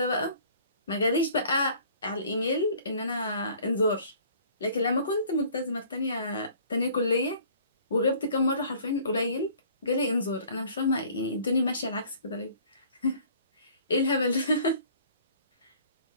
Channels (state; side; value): inverted; both; correlation -0.53